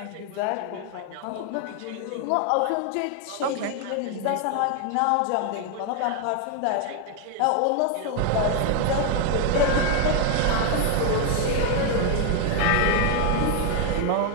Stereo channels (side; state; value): both; different; correlation 0.01